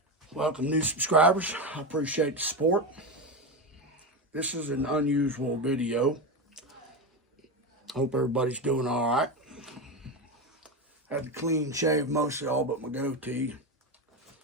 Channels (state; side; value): normal; both; correlation 0.16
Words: Welcome, new subscribers. I appreciate the support. This is an unusual video. Hope everybody's doing all right. Had to clean shave mostly all but my goatee.